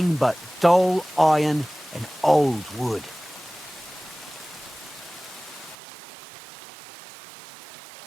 but dull iron and old wood.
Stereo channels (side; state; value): left; drops out; at 5.8 s